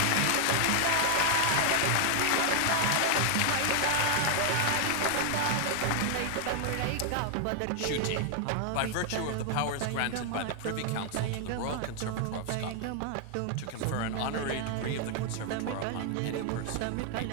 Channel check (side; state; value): both; different; correlation 0.00